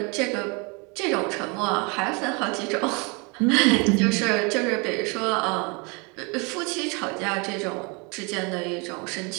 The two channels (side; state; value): left; quieter; 30.4 dB